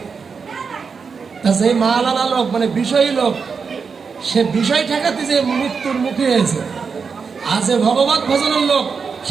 তা সেই মালালা লোক মানে বিষয়ী লোক, সে বিষয় ঠেকাতে যে মৃত্যুর মুখে হয়েছে। আর যে ভগবত ভজনের লোক,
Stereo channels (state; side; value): quieter; left; 5.5 dB